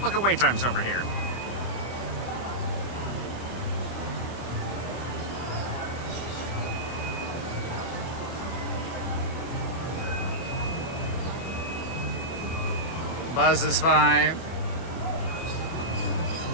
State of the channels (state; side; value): late; right; 24 ms